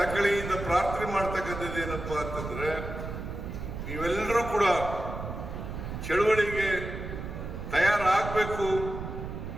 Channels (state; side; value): noise; right; rumble, 7 dB below the sound